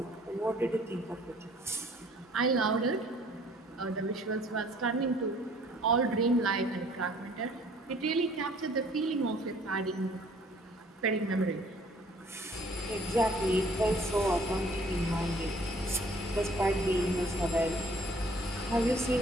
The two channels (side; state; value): both; normal; correlation 0.57